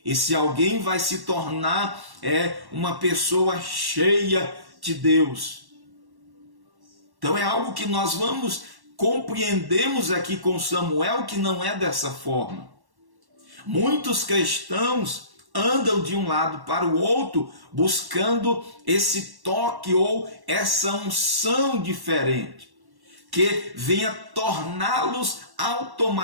Esse alguém vai se tornar uma pessoa cheia de Deus. Então é algo que nós compreendemos aqui com Samuel, que não é dessa forma. Muitos cristãos andam de um lado para o outro buscando esse toque ou essa unção diferente, que venha torná-los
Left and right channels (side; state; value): left; late; 1.1 ms